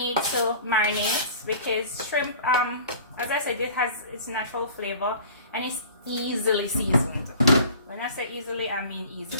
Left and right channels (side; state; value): both; inverted; correlation -0.45